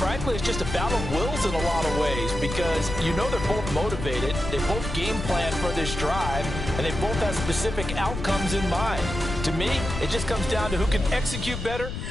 it's just a battle of wills in a lot of ways because you know they're both motivated, they both game plan for this drive, and they both have specific outcomes in mind. To me, it just comes down to who can execute better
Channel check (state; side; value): noise; left; rumble, 6 dB below the sound